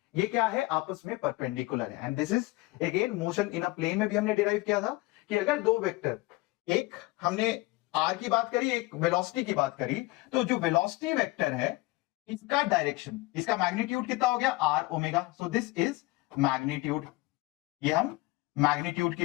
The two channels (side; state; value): right; quieter; 21.1 dB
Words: ये क्या है, आपस में परपेंडिकुलर है। And this is again motion in a plane में भी हमने डिराइव किया था कि अगर दो वेक्टर, एक हमने आर की बात करी, एक वेलोसिटी की बात करी, तो जो वेलोसिटी वेक्टर है इसका डायरेक्शन, इसका मैग्नीट्यूड कितना हो गया, R omega. So this is magnitude, ये हम मैग्नीट्यूड